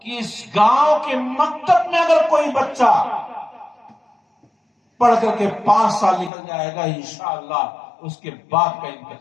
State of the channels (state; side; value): drops out; right; at 6.3 s